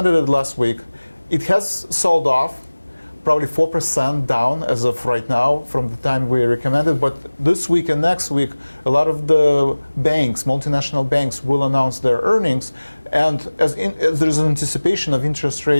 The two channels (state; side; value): inverted; both; correlation -1.00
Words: it last week. It has sold off, probably 4% down as of right now from the time we recommended. But this week and next week, a lot of the banks, multinational banks, will announce their earnings. And as there's an anticipation of interest